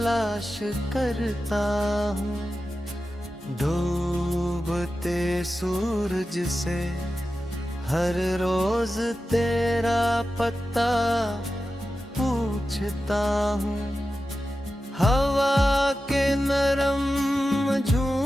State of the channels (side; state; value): both; normal; correlation 0.92